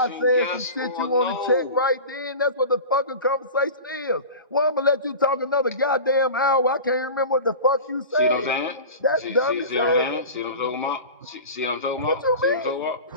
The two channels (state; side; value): inverted; both; correlation -0.33